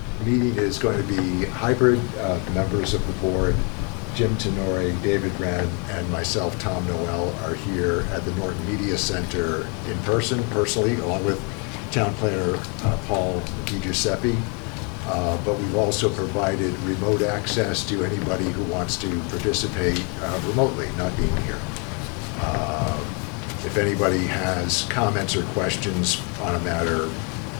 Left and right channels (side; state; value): right; quieter; 35.1 dB